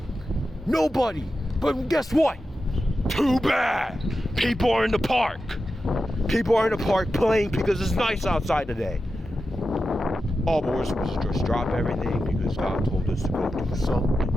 Nobody. But guess what? Too bad. People are in the park. People are in the park playing because it's nice outside today. All we're supposed to just drop everything because God told us to go do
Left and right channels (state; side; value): normal; both; correlation 0.91